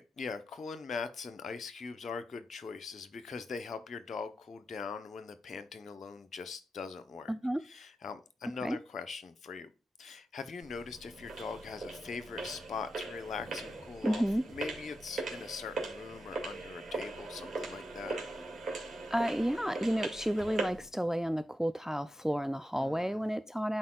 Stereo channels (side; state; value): both; normal; correlation 0.89